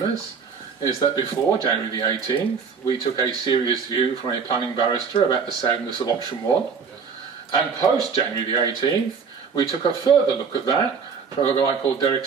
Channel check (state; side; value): quieter; left; 5.8 dB